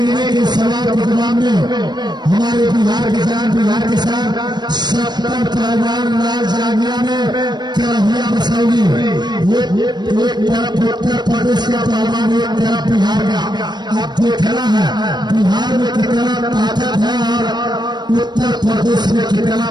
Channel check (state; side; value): late; left; 0.21 ms